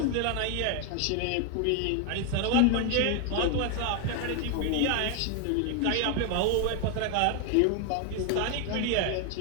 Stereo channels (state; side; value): different; both; correlation 0.01